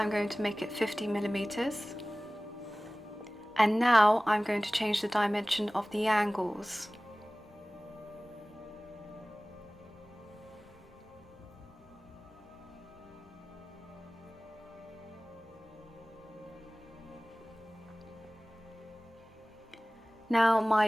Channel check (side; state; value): both; normal; correlation 0.98